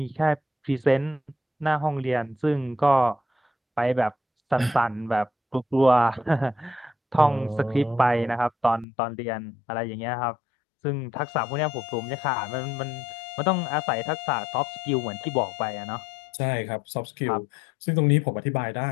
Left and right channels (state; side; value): drops out; right; at 8.8 s